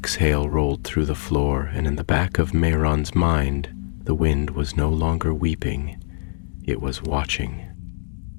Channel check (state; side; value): silent; right; digital silence